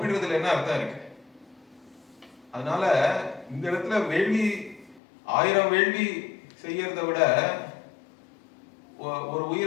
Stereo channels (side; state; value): right; drops out; at 5.0 s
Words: என்ன அர்த்தம் இருக்கு? அதனால இந்த இடத்துல வேள்வி 1000 வேள்வி செய்யறத விட ஒரு